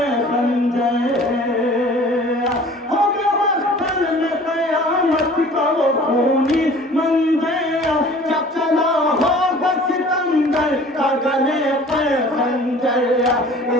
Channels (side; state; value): both; normal; correlation 0.47